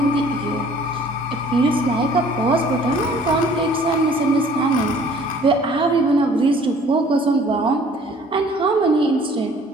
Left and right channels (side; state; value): both; normal; correlation 0.54